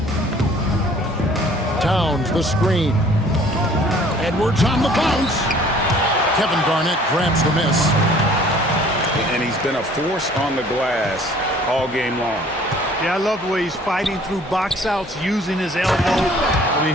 Towns, the screen. Edwards on the bounce. Kevin Garnett grabs the miss. And he's been a force on the glass all game long. Yeah, I love the way he's fighting through box outs, using his elbow. I mean,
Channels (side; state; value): both; normal; correlation 0.54